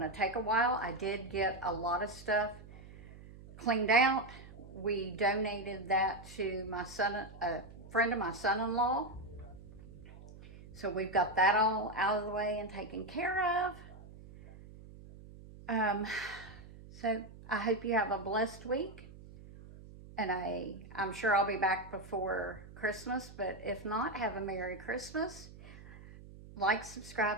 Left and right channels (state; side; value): noise; right; hum, 17 dB below the sound